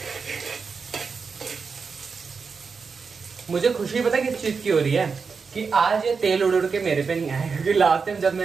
मुझे खुशी पता है किस चीज की हो रही है कि आज ये तेल उड़ उड़ के मेरे पे नहीं आया, क्योंकि लास्ट टाइम जब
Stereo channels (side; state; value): left; quieter; 5.2 dB